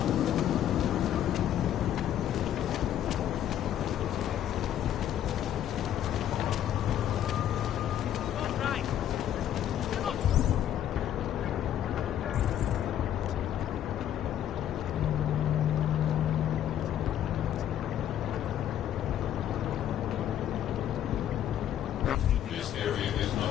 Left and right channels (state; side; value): quieter; right; 10.8 dB